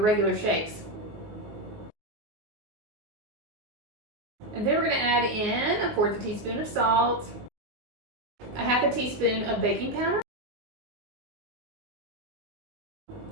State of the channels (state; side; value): late; left; 19 ms